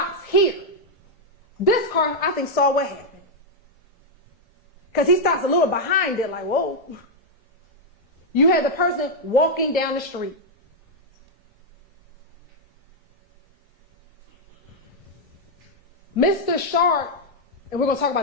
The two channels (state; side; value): normal; both; correlation -0.01